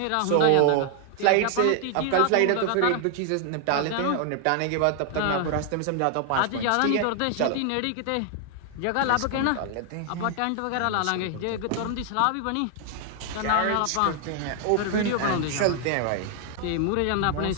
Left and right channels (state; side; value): different; both; correlation 0.00